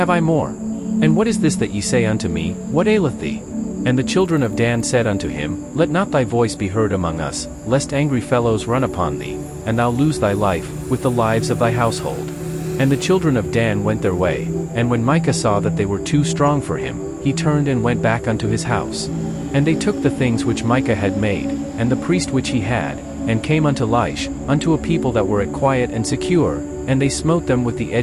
I more? And what is this that ye say unto me, What aileth thee? And the children of Dan said unto him, Let not thy voice be heard among us, lest angry fellows run upon thee, and thou lose thy life, with the lives of thy household. And the children of Dan went their way, and when Micah saw that they were too strong for him, he turned and went back unto his house. And they took the things which Micah had made, and the priest which he had, and came unto Laish, unto a people that were at quiet and secure, and they smote them with the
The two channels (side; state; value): both; identical; correlation 1.00